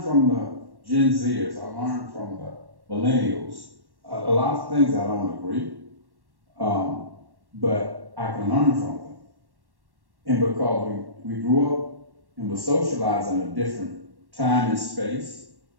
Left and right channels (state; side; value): late; left; 1.1 ms